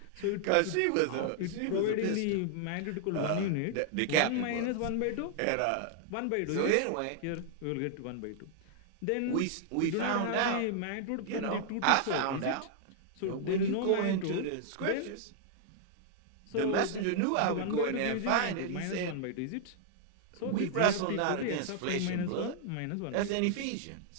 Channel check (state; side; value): different; both; correlation 0.00